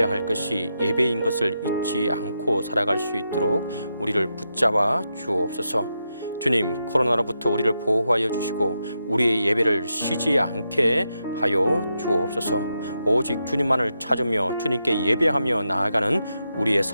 할 것이 예배인 것을 잊지 않고 살아갈 수 있도록 우리를 붙잡아 주옵소서. 주님, 코로나로부터 우리를 보호하여 주시고 우리의 예배를 쉬지 않게 하여 주옵소서. 오직 주님만을 찾으며 주님께 예배하며 나아가는 우리의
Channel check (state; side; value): inverted; both; correlation -0.85